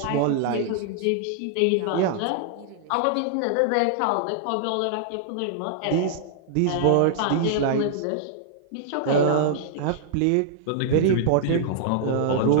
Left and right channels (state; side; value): different; both; correlation -0.01